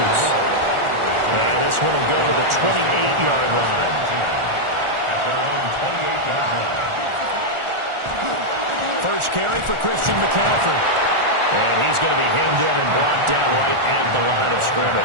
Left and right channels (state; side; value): late; left; 1.4 ms